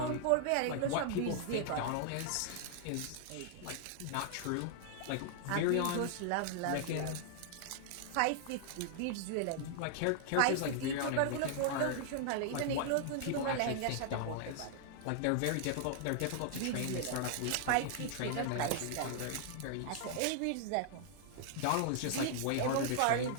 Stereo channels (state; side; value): different; both; correlation -0.01